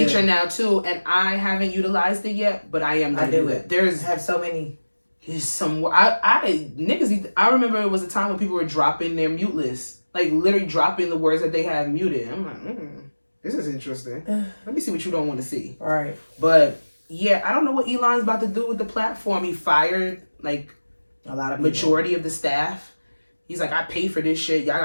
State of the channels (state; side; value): inverted; both; correlation -1.00